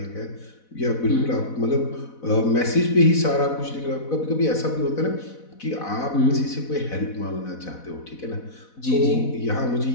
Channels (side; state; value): right; late; 4.1 ms